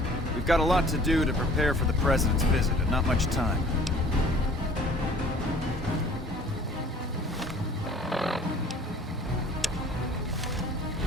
We've got a lot to do to prepare for the President's visit, and not much time.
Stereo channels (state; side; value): normal; both; correlation 0.51